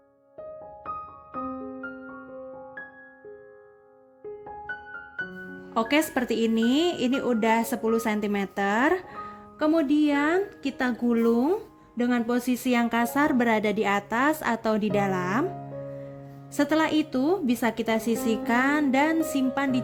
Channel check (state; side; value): identical; both; correlation 1.00